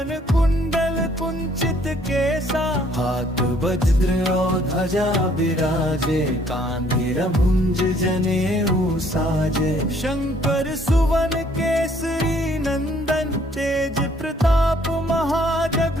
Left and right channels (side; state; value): both; normal; correlation 0.63